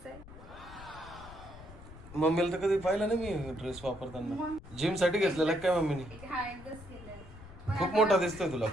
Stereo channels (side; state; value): left; noise; rumble, 17 dB below the sound